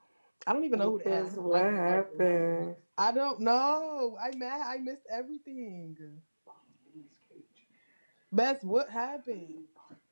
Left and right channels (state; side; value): inverted; both; correlation -1.00